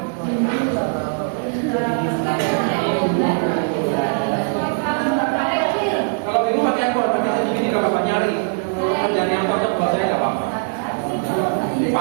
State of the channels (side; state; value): left; silent; digital silence